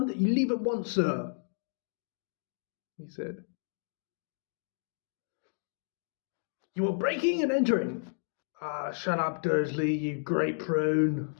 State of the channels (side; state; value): right; silent; digital silence